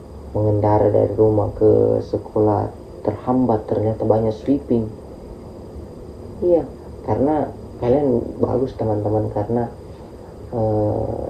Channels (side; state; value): both; identical; correlation 1.00